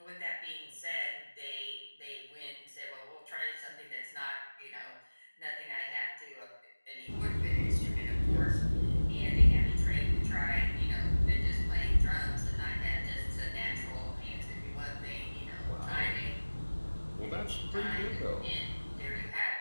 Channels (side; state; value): both; inverted; correlation -1.00